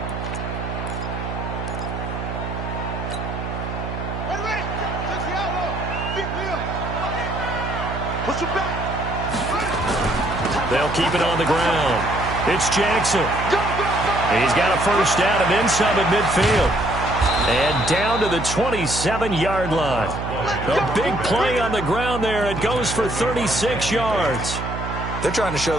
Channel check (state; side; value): noise; right; hum, 6 dB below the sound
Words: They'll keep it on the ground. It's Jackson. He's got a first down and then some at midfield. And down to the 27-yard line. A big play on the ground there. It goes for 36 yards. They're trying to show